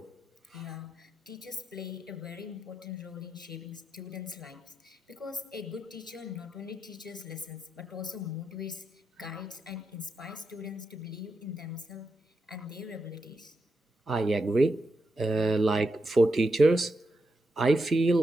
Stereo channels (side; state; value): both; normal; correlation 0.85